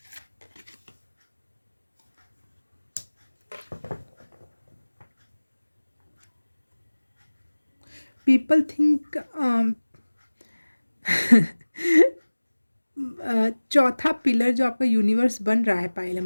People think चौथा पिलर जो आपका यूनिवर्स बन रहा है, पाइल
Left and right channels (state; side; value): inverted; both; correlation -1.00